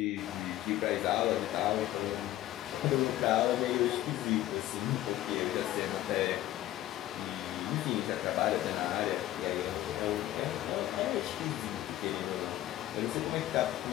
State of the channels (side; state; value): right; quieter; 14.4 dB